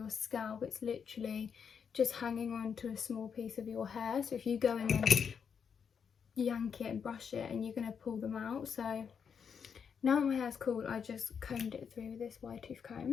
scalp, it's literally just hanging on to a small piece of your hair. So if you go in and yank it and brush it, and you're going to pull them out. So now that my hair's cool, I just combed it through with this wide tooth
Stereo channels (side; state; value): right; quieter; 6.9 dB